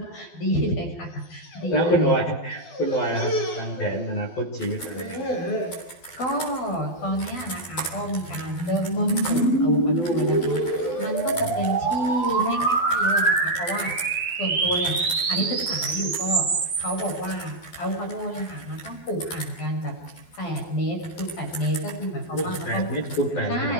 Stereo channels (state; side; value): late; right; 12 ms